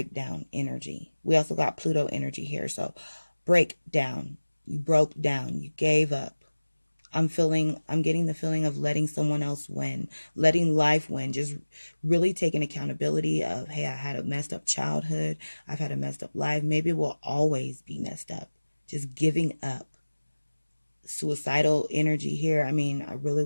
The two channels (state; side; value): inverted; both; correlation -1.00